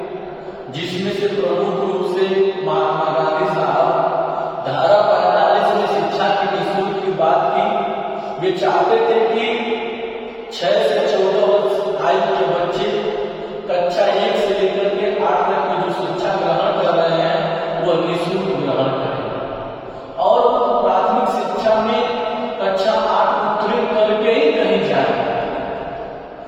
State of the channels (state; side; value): identical; both; correlation 1.00